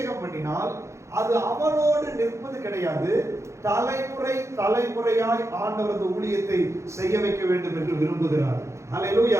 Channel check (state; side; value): late; left; 0.14 ms